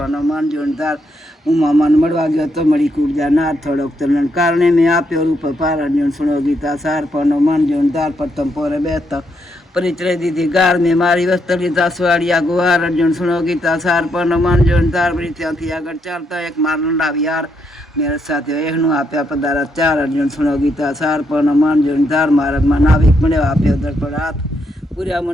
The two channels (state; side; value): normal; both; correlation 0.78